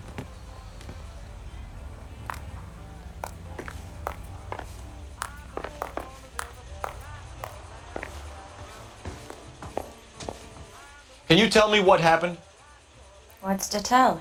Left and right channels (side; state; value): both; identical; correlation 1.00